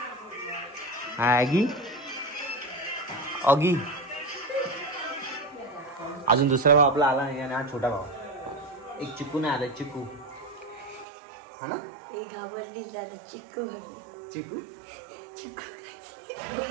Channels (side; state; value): left; drops out; at 11.1 s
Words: हा आगी ऑगी. अजून दुसरा भाव आपला आला नाही आणि हा छोटा भाव. एक चिकू नाही आला चिकू हा ना. एक घाबरली दादा चिक्कू. चिकू